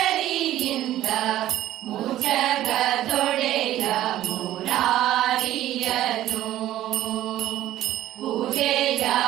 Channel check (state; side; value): quieter; left; 13.6 dB